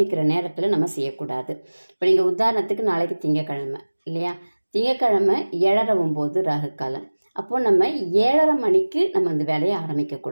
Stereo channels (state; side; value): inverted; both; correlation -1.00